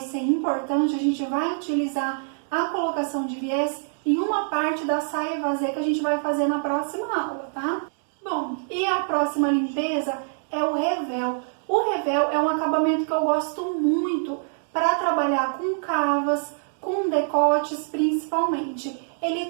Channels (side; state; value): left; silent; digital silence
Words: importante, a gente vai utilizar a colocação de viés em uma parte da saia vazê que a gente vai fazer na próxima aula, tá? Bom, e a próxima limpeza é o revel. O revel é um acabamento que eu gosto muito para trabalhar com cavas, com decotes principalmente. Ele